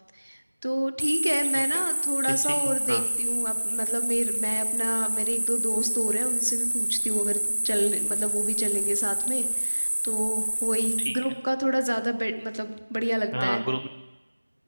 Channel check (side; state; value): both; inverted; correlation -1.00